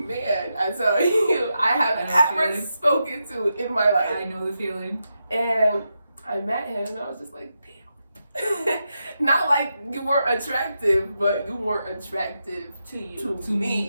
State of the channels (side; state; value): both; inverted; correlation -0.86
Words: I tell you, I have ever spoken to in my life. I know the feeling. And I met him, and I was just like, damn. Not like you weren't attractive, but you weren't attractive to